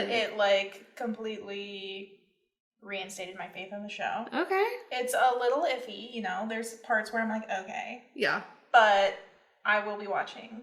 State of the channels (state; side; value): identical; both; correlation 1.00